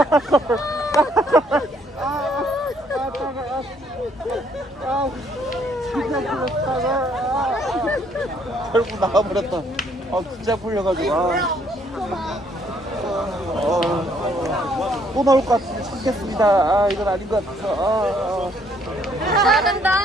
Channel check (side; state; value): both; normal; correlation 0.67